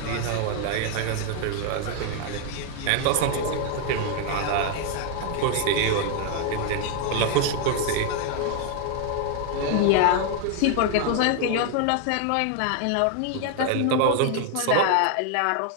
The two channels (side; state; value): both; different; correlation 0.00